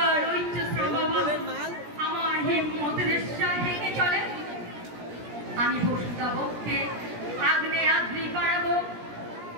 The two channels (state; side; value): late; left; 17 ms